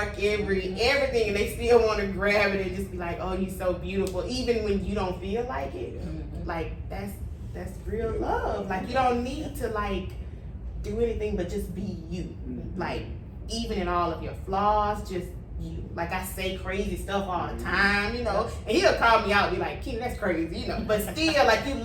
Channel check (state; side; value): identical; both; correlation 1.00